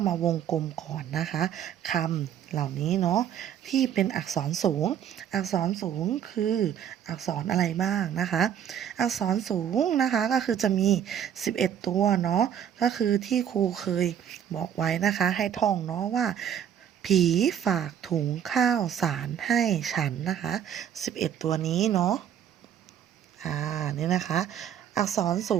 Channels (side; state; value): left; quieter; 9.3 dB